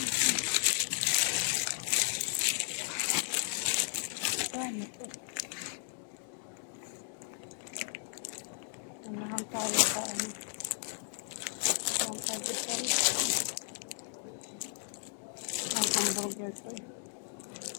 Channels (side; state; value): right; silent; 55 dB below the other